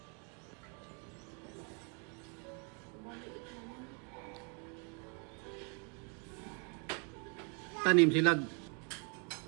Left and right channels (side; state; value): left; quieter; 37.3 dB